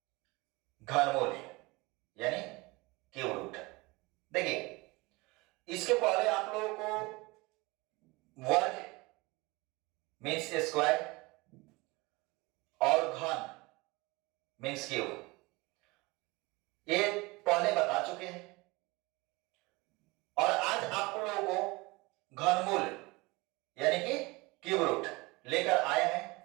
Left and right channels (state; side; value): quieter; left; 23.7 dB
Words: घनमूल यानी क्यूब रूट। देखिए, इसके पहले आप लोगों को वर्ग मीन्स स्क्वायर और घन मीन्स क्यूब ये पहले बता चुके हैं। और आज आप लोगों को घनमूल यानी कि क्यूब रूट लेकर आए